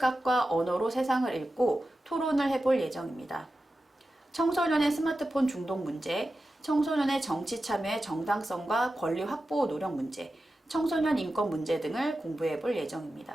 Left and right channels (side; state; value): both; normal; correlation 0.92